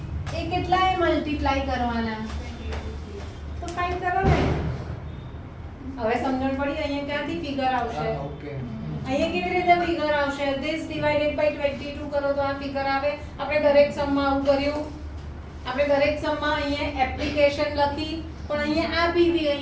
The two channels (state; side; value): identical; both; correlation 1.00